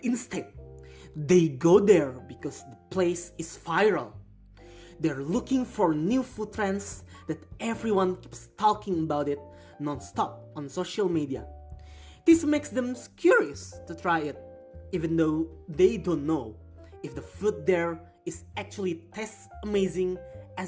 instead they go there because the place is viral. They're looking for new food trends that everyone keeps talking about it non-stop on social media. This makes them curious to try it, even though they don't know if the food there is actually tastes amazing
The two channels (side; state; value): both; identical; correlation 1.00